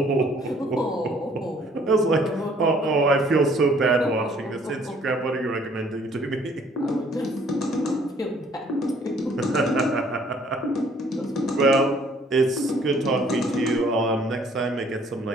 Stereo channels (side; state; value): both; normal; correlation 0.59